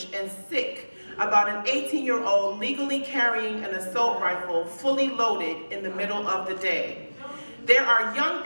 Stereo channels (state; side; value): inverted; both; correlation -1.00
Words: and sick about an 18-year-old legally carrying an assault rifle fully loaded in the middle of the day. There are young